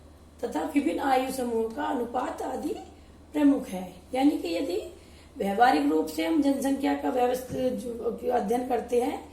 तथा विभिन्न आयु समूहों का अनुपात आदि प्रमुख है। यानी कि यदि व्यवहारिक रूप से हम जनसंख्या का व्यवस्थित अध्ययन करते हैं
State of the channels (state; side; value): identical; both; correlation 1.00